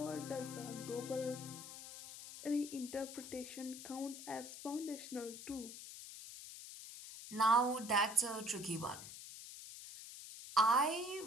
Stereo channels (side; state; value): left; noise; hiss, 12 dB below the sound